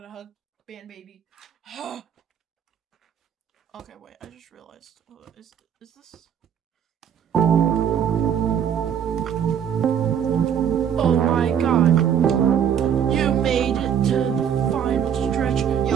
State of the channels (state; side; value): quieter; left; 8.6 dB